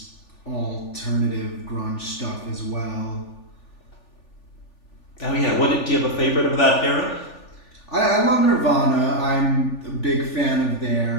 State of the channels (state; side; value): late; right; 3.4 ms